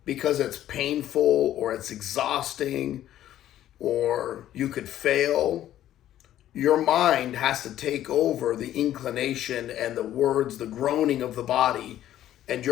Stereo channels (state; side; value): quieter; right; 12.4 dB